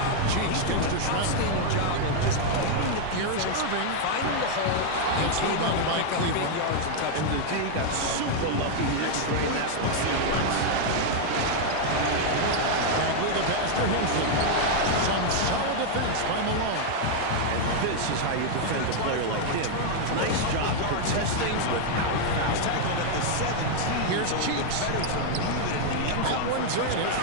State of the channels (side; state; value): both; different; correlation 0.00